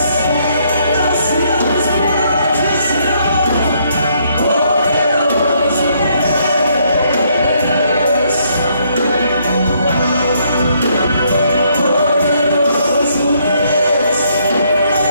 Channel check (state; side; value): inverted; both; correlation -0.70